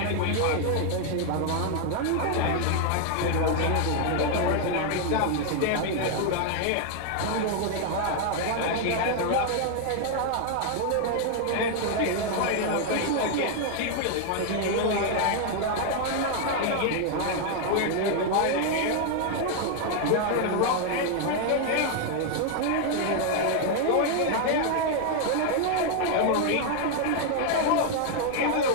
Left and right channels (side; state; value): both; different; correlation 0.00